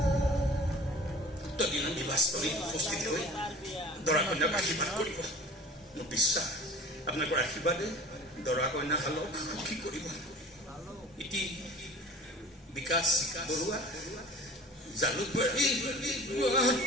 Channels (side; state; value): both; normal; correlation 0.42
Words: তদিনা নিবাসস্থলীত উপস্থিত হৈ দৰা কন্যাক আশীৰ্বাদ কৰিব মোৰ বিশ্বাস আপোনালোকৰ আশীৰ্বাদে দৰা কন্যাহালক সুখী কৰিব ইতি বিকাশ বৰুৱা জালুকবাৰী